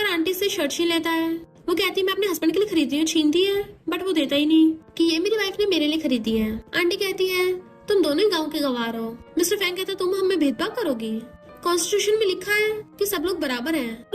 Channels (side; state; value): both; identical; correlation 1.00